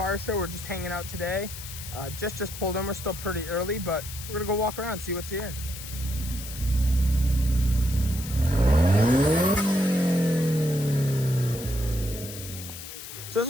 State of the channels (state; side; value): noise; left; hiss, 11 dB below the sound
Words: show. We're just hanging out today. Just pulled in. We're still pretty early, but we're gonna go walk around and see what's here. So this